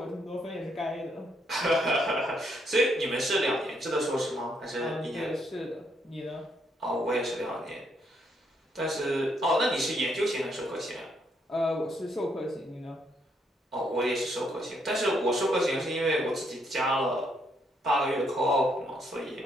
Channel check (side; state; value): both; normal; correlation 0.74